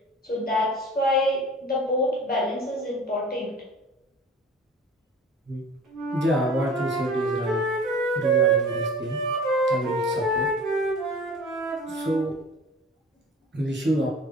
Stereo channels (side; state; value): both; normal; correlation 0.42